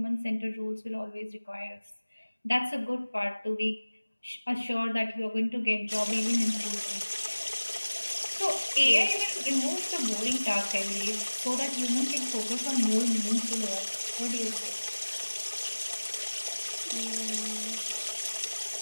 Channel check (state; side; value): inverted; both; correlation -1.00